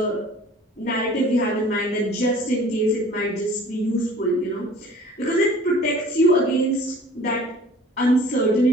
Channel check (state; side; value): normal; both; correlation 0.48